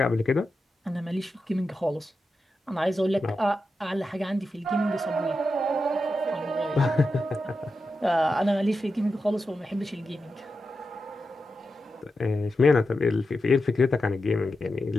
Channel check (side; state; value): both; normal; correlation 0.89